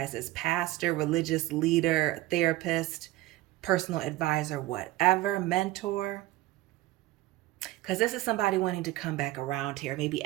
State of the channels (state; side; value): quieter; left; 16.9 dB